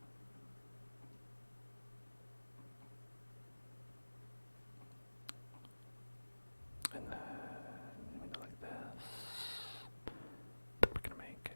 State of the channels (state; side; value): inverted; both; correlation -1.00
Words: and then we do like this. Then we're gonna make